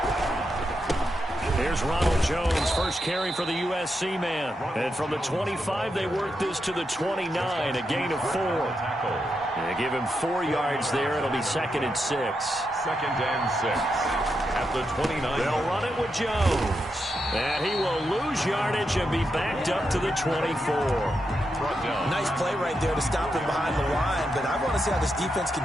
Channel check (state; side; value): normal; both; correlation 0.85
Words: Carry for the USC man. And from the 25, they work this to the 29, a gain of 4. They give him 4 yards there. It'll be 2nd and 6. 2nd and 6. At the 29. They'll run it with Jones. And he will lose yardage and be backed up to the 24. Nice play right there to stop him behind the line, but I want to see how this defense